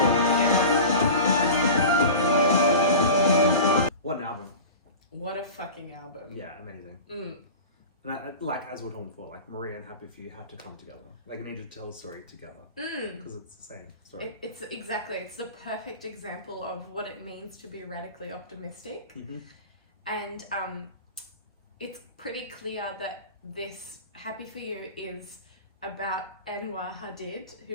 What an album. What a fucking album. Yeah, amazing. And like as we're talking before, like Maria and Happy For You had to come together. Like you need to tell a story together because it's the same story. It's the perfect example of what it means to be radically optimistic. And it's pretty clear that this Happy For You is about Anwar Hadid,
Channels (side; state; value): both; inverted; correlation -0.33